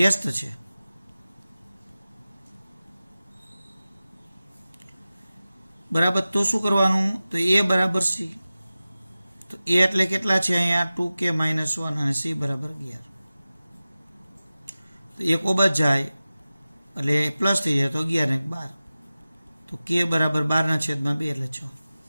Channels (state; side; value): inverted; both; correlation -0.96